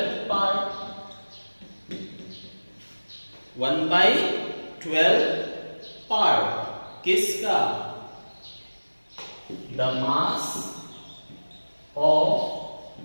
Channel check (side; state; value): both; inverted; correlation -1.00